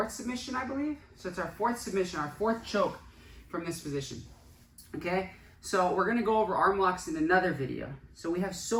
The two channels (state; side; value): identical; both; correlation 1.00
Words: submission, I believe. So it's our fourth submission, our fourth choke from this position. Okay? So we're going to go over arm locks in another video. So we have